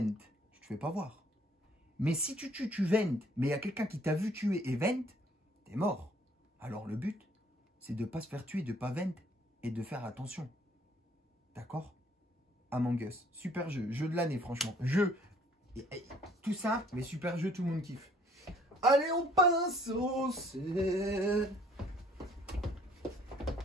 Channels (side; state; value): both; normal; correlation 0.60